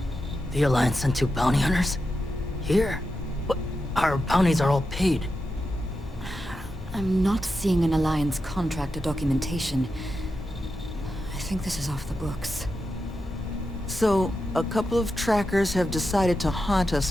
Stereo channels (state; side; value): normal; both; correlation 0.88